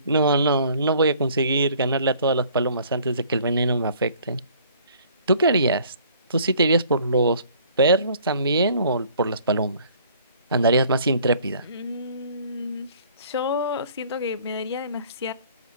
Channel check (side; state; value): both; inverted; correlation -0.56